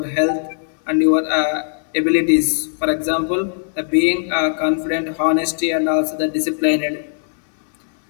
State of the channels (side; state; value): right; silent; digital silence